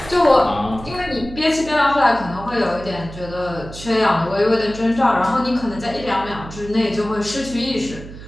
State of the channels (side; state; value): right; noise; hum, 14 dB below the sound